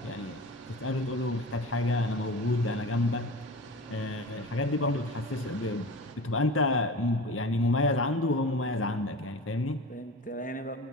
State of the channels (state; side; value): normal; both; correlation 0.34